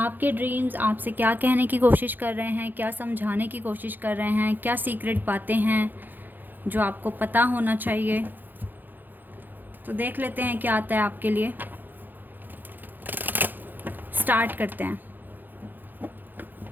ड्रीम्स आपसे क्या कहने की कोशिश कर रहे हैं, क्या समझाने की कोशिश कर रहे हैं, क्या सीक्रेट बातें हैं जो आपको पता होना चाहिए। तो देख लेते हैं क्या आता है आपके लिए। स्टार्ट करते हैं।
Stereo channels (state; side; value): late; left; 0.088 ms